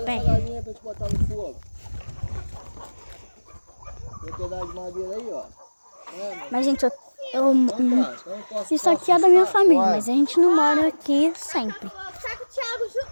pé. essa galinha pra te botar no fogo. Tem um pedaço de madeira aí, ó. Mas, gente, Então, isso aqui é da minha família, mas a gente não mora aqui sempre. Tá com o Thiago junto.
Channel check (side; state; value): both; inverted; correlation -1.00